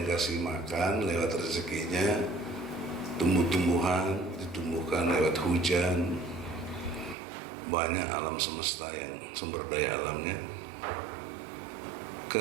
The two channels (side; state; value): left; drops out; at 7.2 s